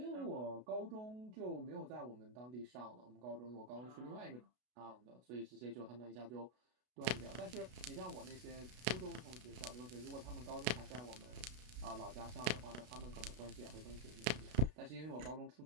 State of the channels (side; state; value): left; late; 32 ms